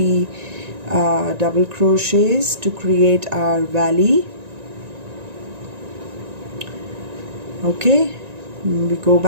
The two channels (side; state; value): left; late; 1.9 ms